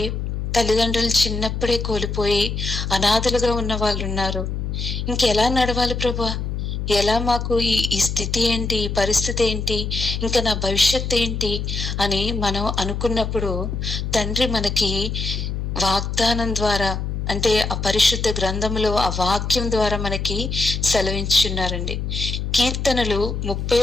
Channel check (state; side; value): noise; left; hum, 3 dB below the sound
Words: తల్లిదండ్రులు చిన్నప్పుడే కోల్పోయి అనాథలుగా ఉన్న వాళ్ళు ఉన్నారు. ఇంకెలా నడవాలి ప్రభా, ఎలా మాకు ఈ స్థితి ఏంటి, ఈ పరిస్థితి ఏంటి, ఇంకా నా భవిష్యత్ ఏంటి అని మనం అనుకున్నప్పుడు, తండ్రి మనకి వాగ్దానం ద్వారా, అంటే ఆ పరిశుద్ధ గ్రంథంలో ఆ వాక్యం ద్వారా మనకి సెలవించున్నారండి. కీర్తనలు